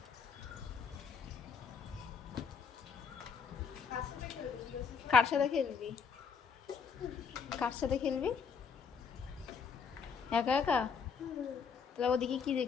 কার সাথে খেলবি? কার সাথে খেলবি? একা একা? তাহলে ওদিকে কি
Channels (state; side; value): quieter; right; 6.2 dB